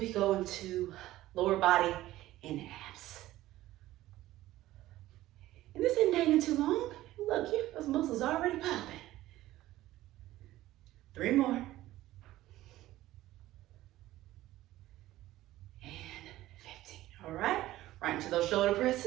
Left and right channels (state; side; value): quieter; left; 15.6 dB